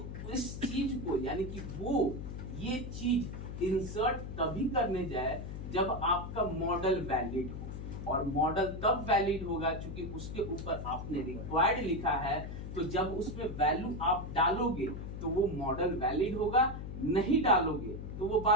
इस चीज को यानी कि वो ये चीज इंसर्ट तभी करने जाए जब आपका मॉडल वैलिड हो, और मॉडल तब वैलिड होगा क्योंकि उसके ऊपर आपने रिक्वायर्ड लिखा है। तो जब उसमें वैल्यू आप डालोगे तो वो मॉडल वैलिड होगा, नहीं डालोगे तो वो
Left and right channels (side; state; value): left; noise; hum, 7 dB below the sound